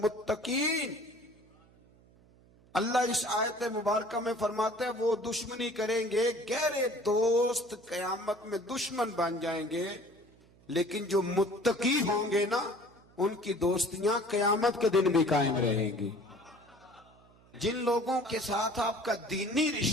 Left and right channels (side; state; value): right; noise; hum, 28 dB below the sound